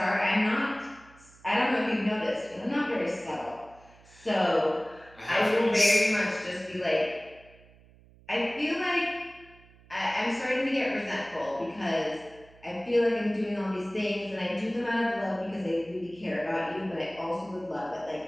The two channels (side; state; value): right; noise; hum, 26 dB below the sound